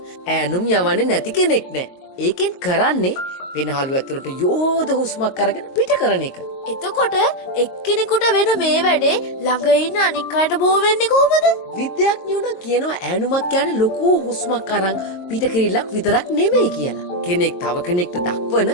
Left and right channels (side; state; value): right; late; 22 ms